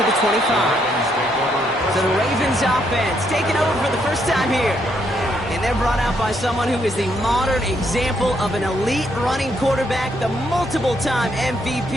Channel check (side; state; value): both; normal; correlation 0.74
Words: the 25. So the Ravens offense taking over for the first time here. And they're brought out by someone who is the modern example of an elite running quarterback, the multiple-time